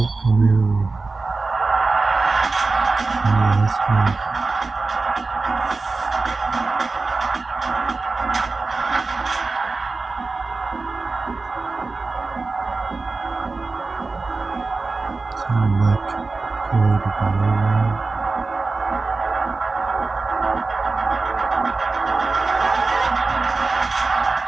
premiere last month. Select code Valorant.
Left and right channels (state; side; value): quieter; left; 3.8 dB